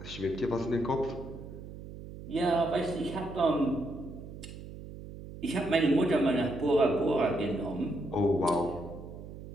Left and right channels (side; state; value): right; noise; hum, 13 dB below the sound